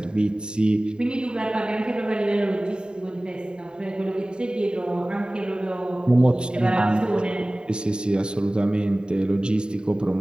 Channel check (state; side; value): late; left; 0.048 ms